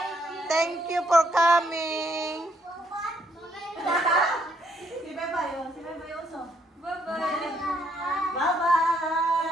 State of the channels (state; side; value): normal; both; correlation 0.72